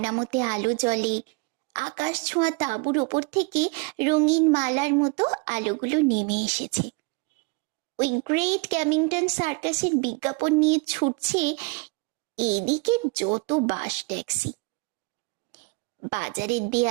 আলো জ্বলে, আকাশ ছোঁয়া তাঁবুর ওপর থেকে রঙিন মালার মতো আলোগুলো নেমে এসেছে। ওই গ্রেট ক্যামিংটন সার্কাসের বিজ্ঞাপন নিয়ে ছুটছে এদিকে যত বাস ট্যাক্সি। বাজারের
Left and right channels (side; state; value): left; quieter; 28.5 dB